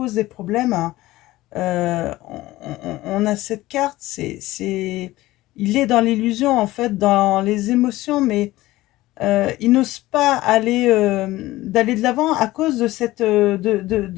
des problèmes, hein. On a cette carte, il est dans l'illusion, en fait, dans les émotions, mais il n'ose pas d'aller de l'avant à cause de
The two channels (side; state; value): right; quieter; 17.5 dB